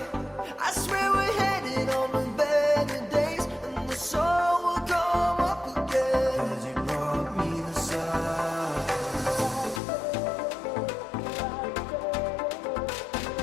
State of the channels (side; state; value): right; drops out; at 9.8 s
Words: I swear we're headed on to better days, and the sun will come up again. 'Cause you brought me the sun.